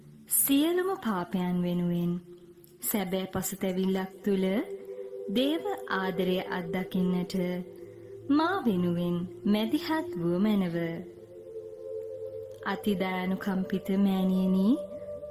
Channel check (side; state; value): both; identical; correlation 1.00